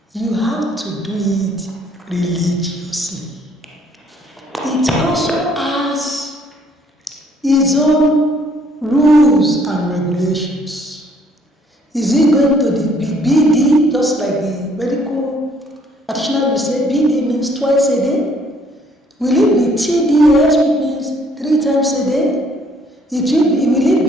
you have to do it religiously. It also has its own rules and regulations. Is it going to be BD, just like the medical practitioner will say BD means twice a day? Will it be TDS, which means 3 times a day? Will it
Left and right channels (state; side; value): normal; both; correlation 0.63